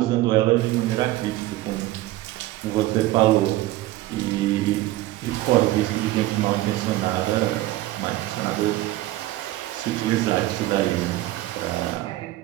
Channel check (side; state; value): left; quieter; 16.5 dB